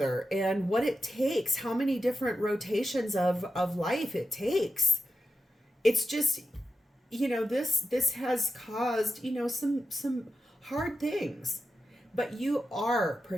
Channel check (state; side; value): normal; both; correlation 0.89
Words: and what it takes, how many different rotations of life it takes. It's just, this has caused, some hard things, but you are